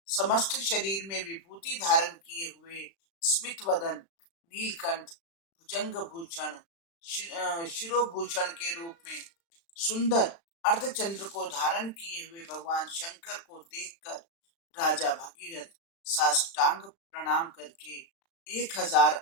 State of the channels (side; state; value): right; late; 36 ms